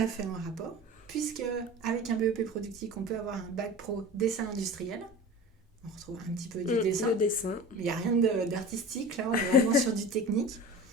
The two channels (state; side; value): normal; both; correlation 0.36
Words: fait en rapport, puisque avec un BEP productique, on peut avoir un bac pro dessin industriel. On retrouve un petit peu du dessin. Le dessin. Mais il n'y a rien d'artistique, là, on est vraiment sur du technique.